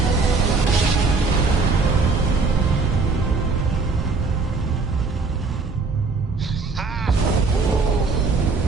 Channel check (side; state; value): left; quieter; 4.2 dB